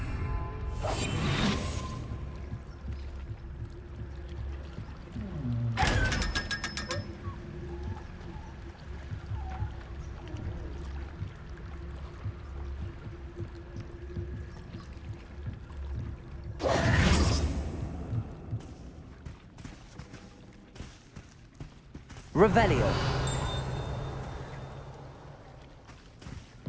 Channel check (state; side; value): identical; both; correlation 1.00